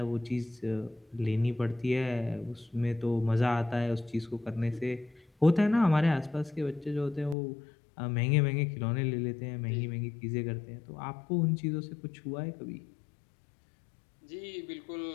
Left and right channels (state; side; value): drops out; right; at 7.4 s